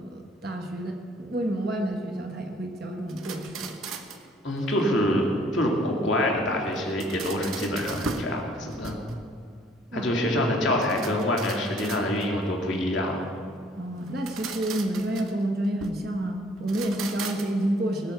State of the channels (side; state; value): both; normal; correlation 0.60